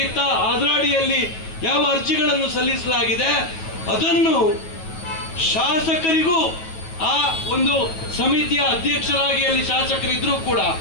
ಇತ್ತ ಅದರ ಅಡಿಯಲ್ಲಿ ಯಾವ ಅರ್ಜಿಗಳನ್ನು ಸಲ್ಲಿಸಲಾಗಿದೆ, ಅದನ್ನು ಶಾಸಕರಿಗೂ ಆ ಒಂದು ಸಮಿತಿಯ ಅಧ್ಯಕ್ಷರಾಗಿ ಅಲ್ಲಿ ಶಾಸಕರಿದ್ರೂ ಕೂಡ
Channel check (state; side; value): late; right; 9.2 ms